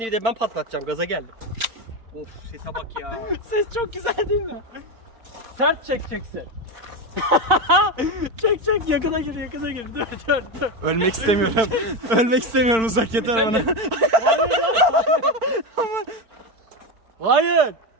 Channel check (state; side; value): late; left; 4.4 ms